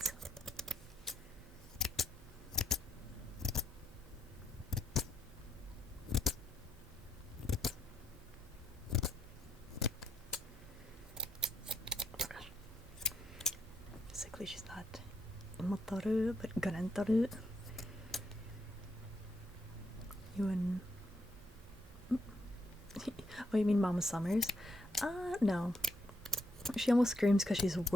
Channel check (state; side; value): normal; both; correlation 0.77